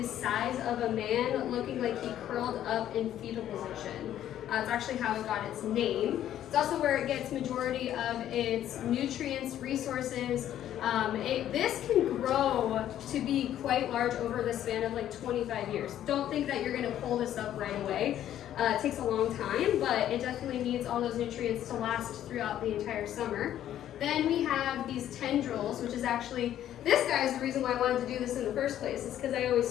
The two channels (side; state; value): right; quieter; 11.5 dB